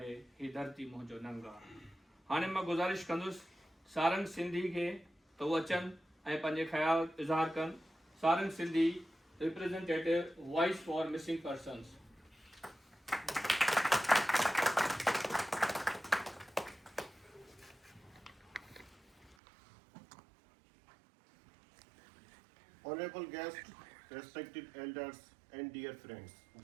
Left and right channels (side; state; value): left; drops out; at 19.4 s